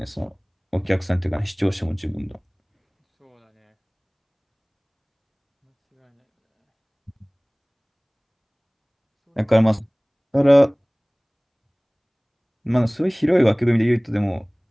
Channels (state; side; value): identical; both; correlation 1.00